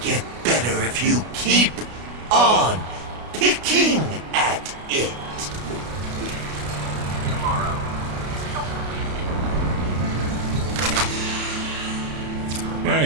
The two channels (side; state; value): left; late; 33 ms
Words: better if you keep on picking at it.